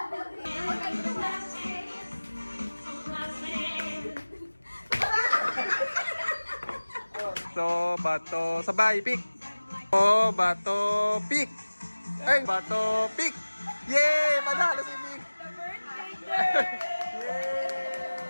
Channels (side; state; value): both; inverted; correlation -1.00